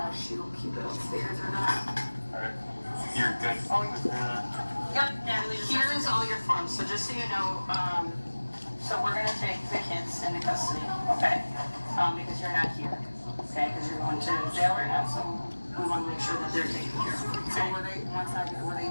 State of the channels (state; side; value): inverted; both; correlation -1.00